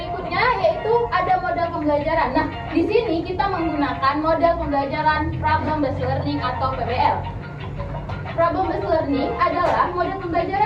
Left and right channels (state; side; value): identical; both; correlation 1.00